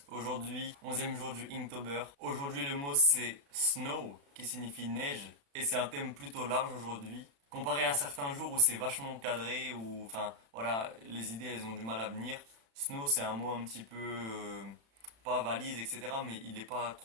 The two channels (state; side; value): late; left; 36 ms